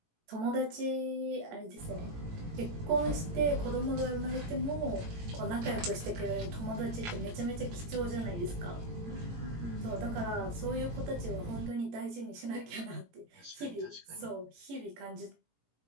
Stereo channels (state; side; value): late; left; 18 ms